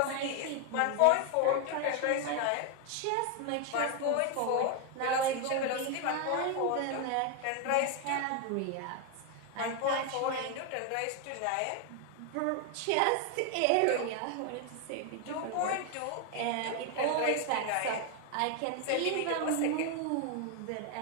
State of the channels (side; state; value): both; different; correlation 0.01